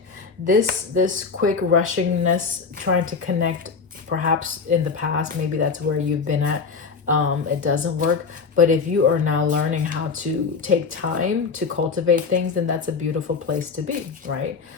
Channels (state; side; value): quieter; right; 5.1 dB